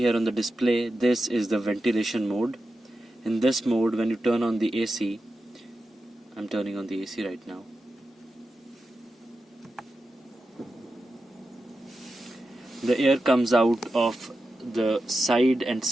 on the display, this is the ventilation mode. In this mode, when you turn on the AC, I'm turning on the AC right now. The air comes out of the side and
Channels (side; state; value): both; normal; correlation 0.91